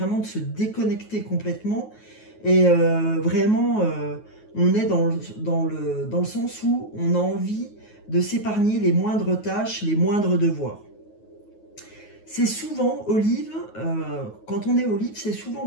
de se déconnecter complètement. Et vraiment, on est dans le sens où on a envie de s'épargner les moindres tâches, les moindres devoirs. C'est souvent, olive, quand on est olive, c'est souvent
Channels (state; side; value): late; right; 9.4 ms